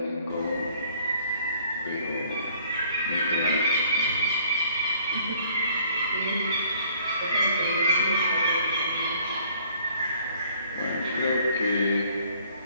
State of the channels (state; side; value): inverted; both; correlation -0.59